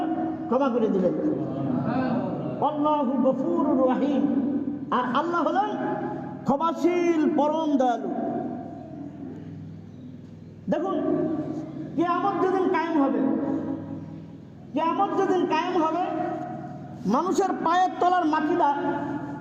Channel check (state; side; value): identical; both; correlation 1.00